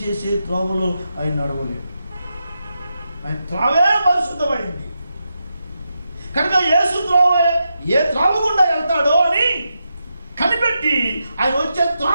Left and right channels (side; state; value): both; inverted; correlation -0.87